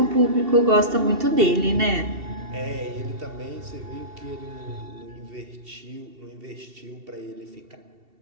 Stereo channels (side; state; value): left; late; 2.7 ms